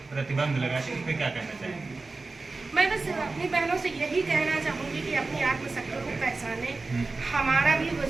प्रतिबंध लगाती है, इस पर क्या कहना चाहेंगे? मैं बस अपनी बहनों से यही कहना चाहूँगी कि अपनी आत्मशक्ति को पहचाने। हमारा भी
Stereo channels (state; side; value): quieter; left; 3.7 dB